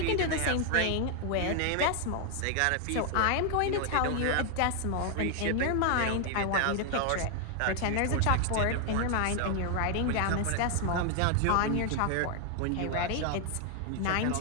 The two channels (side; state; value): both; different; correlation 0.00